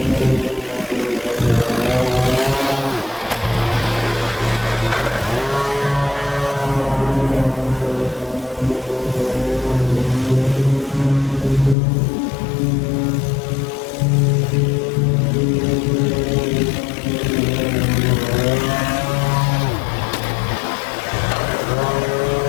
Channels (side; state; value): right; drops out; at 11.8 s